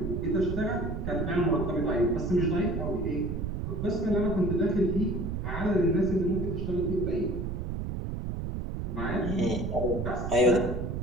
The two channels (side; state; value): right; noise; rumble, 4 dB below the sound